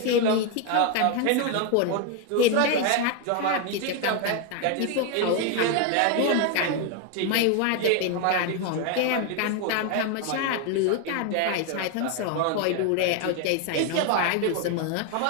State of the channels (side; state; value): both; different; correlation 0.01